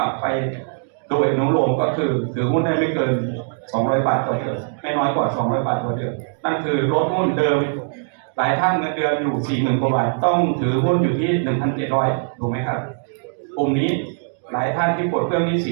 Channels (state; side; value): silent; left; digital silence